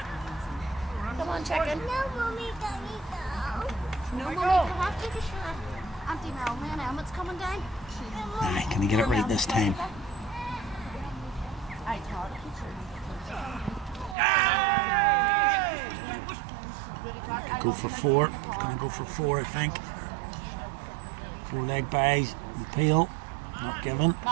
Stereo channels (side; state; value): left; drops out; at 14.2 s